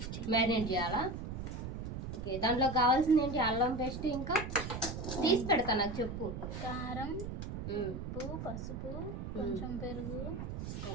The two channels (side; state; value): right; noise; rumble, 6 dB below the sound